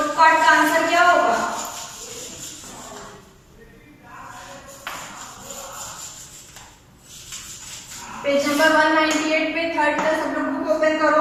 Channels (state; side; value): identical; both; correlation 1.00